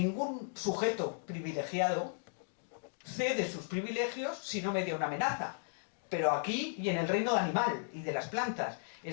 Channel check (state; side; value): silent; right; digital silence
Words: sujeto privilegiado cede sus privilegios si no media una amenaza. Pero aquí y en el reino animal y de las plantas.